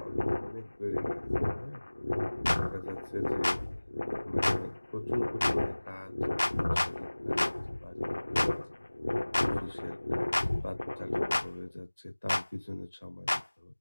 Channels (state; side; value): inverted; both; correlation -1.00